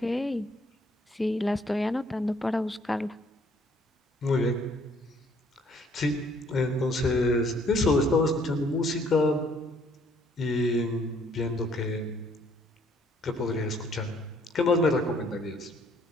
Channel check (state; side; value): normal; both; correlation 0.63